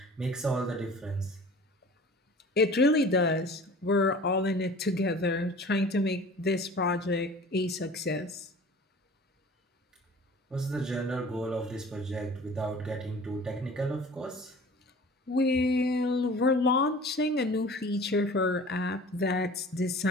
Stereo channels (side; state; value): both; normal; correlation 0.44